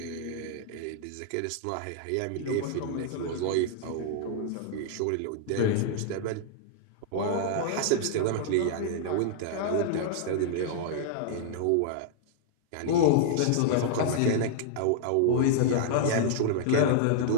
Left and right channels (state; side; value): different; both; correlation -0.01